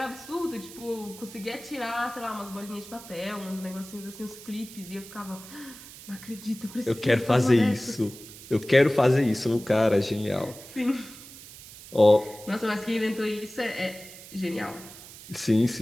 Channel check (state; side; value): noise; right; hiss, 16 dB below the sound